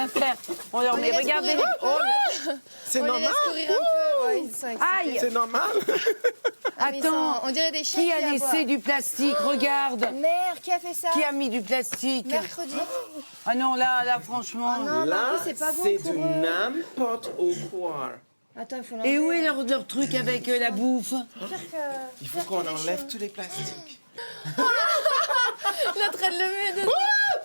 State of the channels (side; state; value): both; inverted; correlation -1.00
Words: faire. On leur met, regardez les... Oh, C'est On les normal. laisse courir un peu, ouais, ils sont excités. aïe. C'est normal. Ah, mais ils Attends. sont- on dirait des chiens Qui a aboient. laissé du plastique? Regarde. Mère, qui a fait ça? Qui a mis du plastique? Mercredi. Ah non, là, franchement. Ah non, Là, en plus, c'est pas bon c'est pour du eux. n'importe quoi. Attends, il faut l'enlever. Et où est leur truc avec la bouffe? Il faut qu'on enlève tous les plastiques. Il est en train de le mettre dedans.